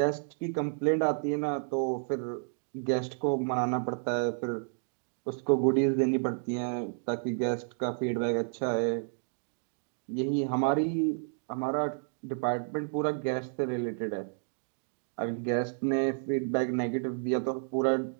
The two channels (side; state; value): left; silent; digital silence